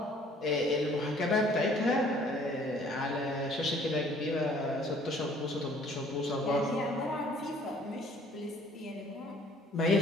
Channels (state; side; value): normal; both; correlation 0.57